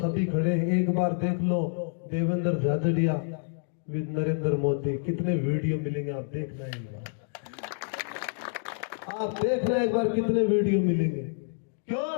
खड़े हैं। एक बार देख लो देवेंद्र झाझड़िया विद नरेंद्र मोदी, कितने वीडियो मिलेंगे आप देखना एक बार, आप देखना एक बार कितने वीडियो मिलेंगे। क्यों?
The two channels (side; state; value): right; silent; digital silence